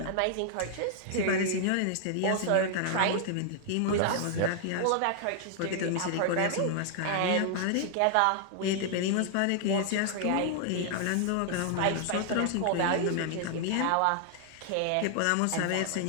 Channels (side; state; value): both; different; correlation 0.00